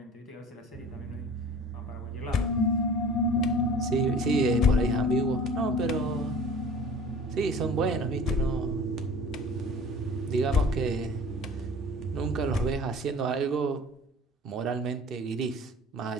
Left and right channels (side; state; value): both; normal; correlation 0.44